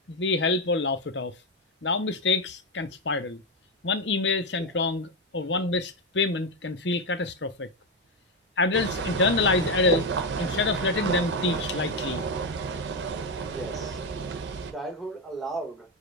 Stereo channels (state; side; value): normal; both; correlation 0.09